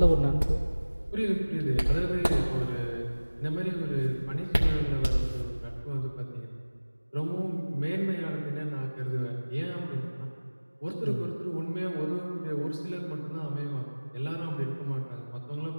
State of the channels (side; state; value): both; inverted; correlation -1.00